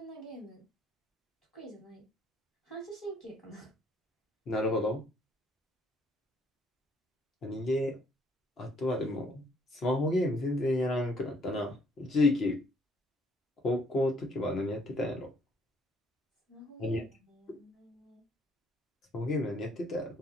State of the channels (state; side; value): normal; both; correlation 0.65